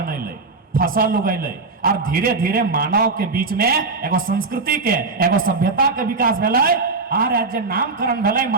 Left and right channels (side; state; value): left; quieter; 4.0 dB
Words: फसल उगैले, और धीरे धीरे मानव के बीच में एगो संस्कृति के, एगो सभ्यता के विकास भेलै। और आज नामकरण भेलै